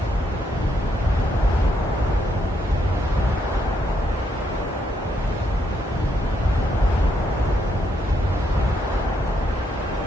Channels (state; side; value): normal; both; correlation 0.76